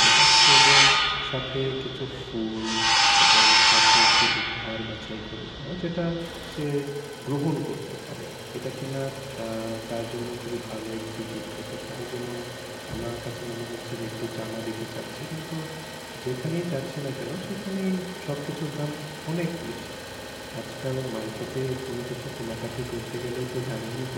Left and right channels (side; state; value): both; identical; correlation 1.00